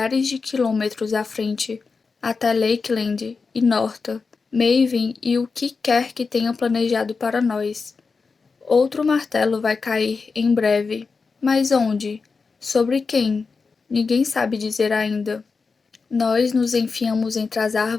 de quilômetros à frente, até Lakeland e Norta, Maven e o que quer que tenham planejado para nós. Outro martelo vai cair em breve. Mas onde? Sobre quem? Ninguém sabe dizer ainda. Nós nos enfiamos entre as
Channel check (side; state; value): right; quieter; 4.7 dB